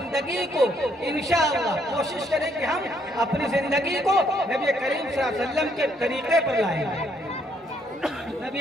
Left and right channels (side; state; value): both; normal; correlation 0.70